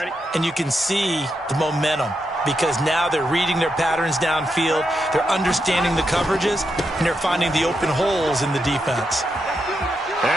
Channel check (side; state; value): both; normal; correlation 0.84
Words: and you can see the momentum because now they're reading their patterns downfield, they're understanding the coverages, and they're finding the open holes in the defense.